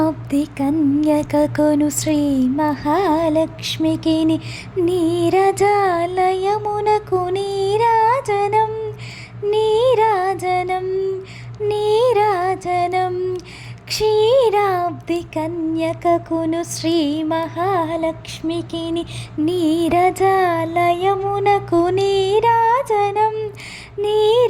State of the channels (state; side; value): identical; both; correlation 1.00